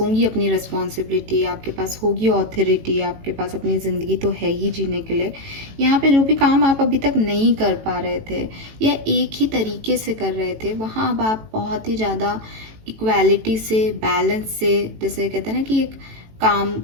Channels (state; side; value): late; left; 18 ms